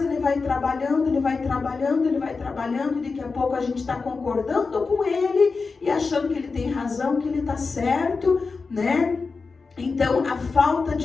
ele vai trabalhando, e daqui a pouco a gente está concordando com ele e achando que ele tem razão, que ele está certo, Então, a falta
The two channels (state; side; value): quieter; right; 4.4 dB